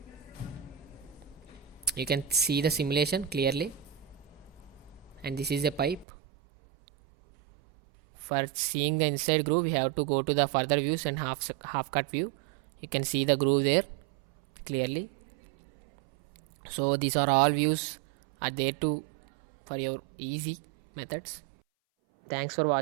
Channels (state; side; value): drops out; left; at 6.1 s